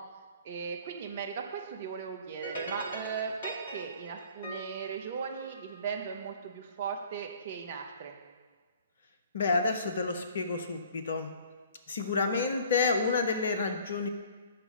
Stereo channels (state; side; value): inverted; both; correlation -0.51